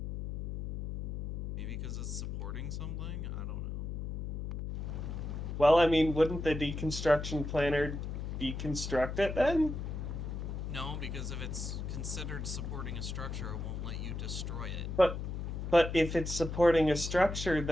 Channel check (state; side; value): noise; left; hum, 5 dB below the sound